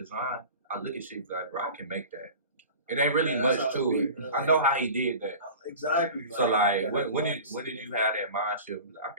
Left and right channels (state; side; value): inverted; both; correlation -0.38